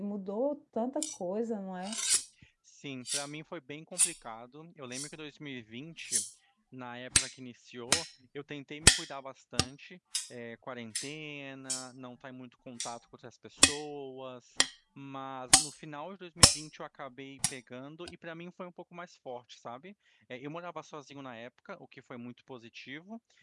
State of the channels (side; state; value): both; identical; correlation 1.00